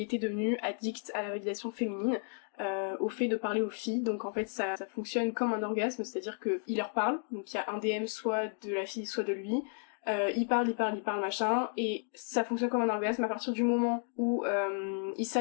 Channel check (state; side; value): silent; right; 56 dB below the other